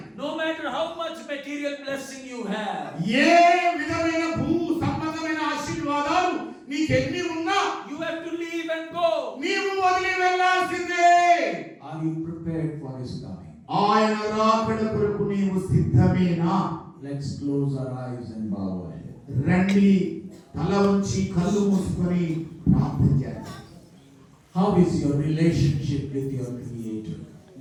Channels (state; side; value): identical; both; correlation 1.00